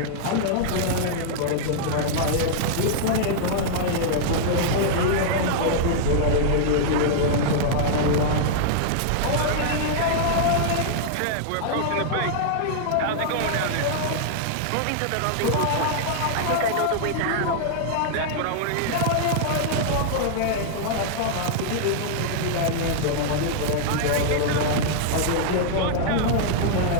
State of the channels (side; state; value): both; different; correlation -0.01